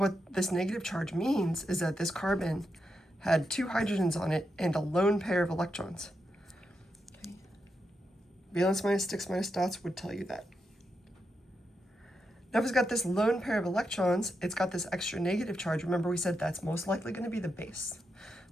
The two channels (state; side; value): normal; both; correlation 0.85